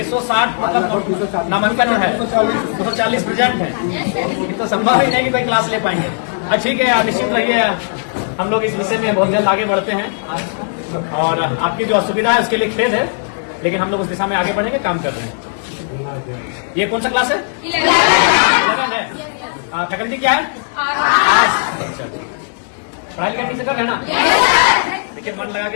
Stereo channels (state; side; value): silent; right; digital silence